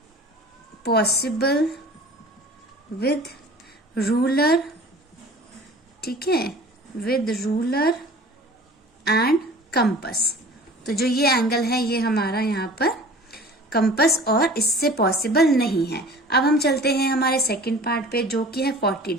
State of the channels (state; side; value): normal; both; correlation 0.44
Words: possible with ruler, ठीक है, विद रूलर एंड कंपास। तो जो ये एंगल है ये हमारा यहाँ पर कंपास और इससे पॉसिबल नहीं है। अब हम चलते हैं हमारे सेकंड पार्ट पे जो कि है 40